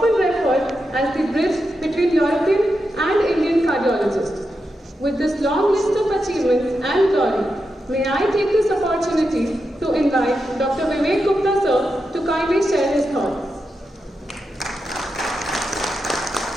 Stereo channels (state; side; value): normal; both; correlation 0.87